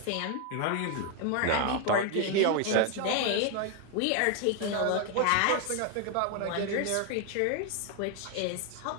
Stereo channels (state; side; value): different; both; correlation 0.01